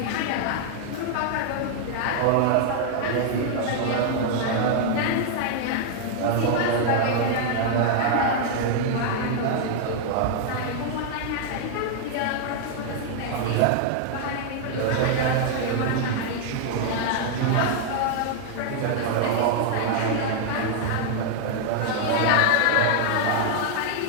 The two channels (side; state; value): both; different; correlation -0.01